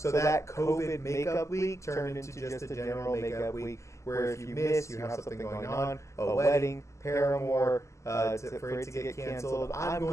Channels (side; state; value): right; late; 0.14 ms